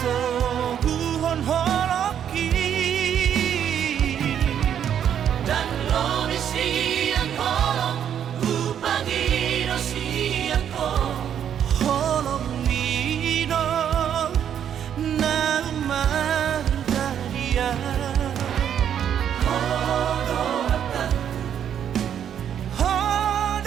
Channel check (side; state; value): left; quieter; 9.2 dB